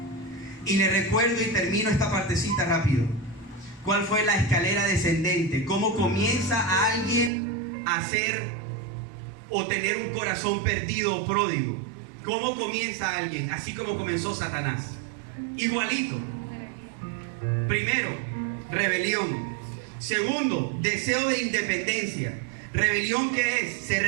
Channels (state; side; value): drops out; left; at 7.3 s